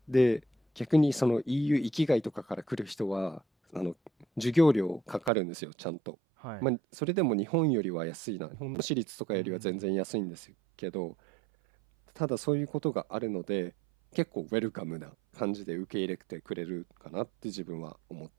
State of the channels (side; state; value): left; drops out; at 5.3 s